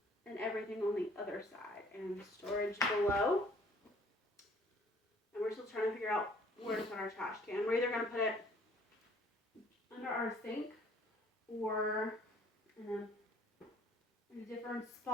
and everything on the other side, and storage below. And we're still trying to figure out where to put our trash can. We're either gonna put it under our sink or in a different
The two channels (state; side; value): normal; both; correlation 0.57